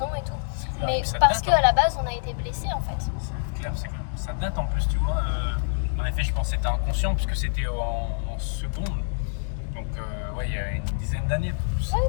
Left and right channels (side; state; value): right; silent; digital silence